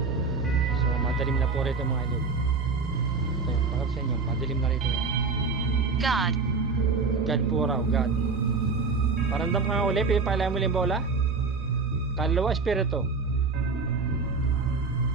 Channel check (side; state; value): left; quieter; 4.4 dB